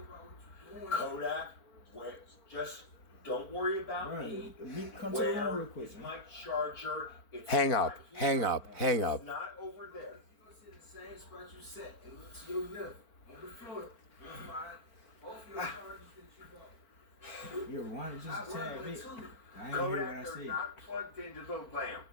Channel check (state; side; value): late; right; 4.5 ms